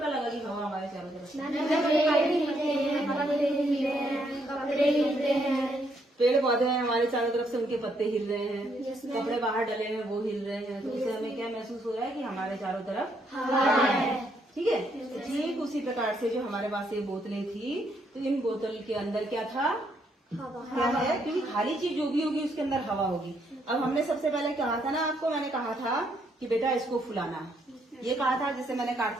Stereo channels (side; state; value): both; normal; correlation 0.73